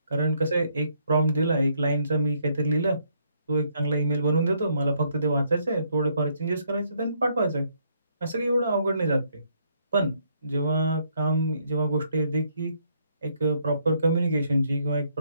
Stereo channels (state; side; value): inverted; both; correlation -0.71